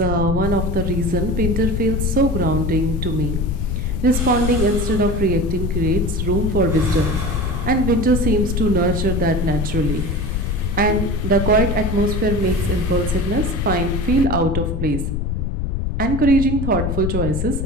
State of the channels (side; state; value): left; noise; rumble, 1 dB below the sound